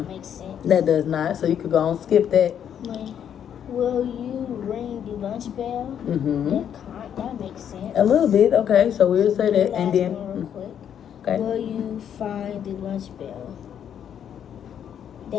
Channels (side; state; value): right; quieter; 9.0 dB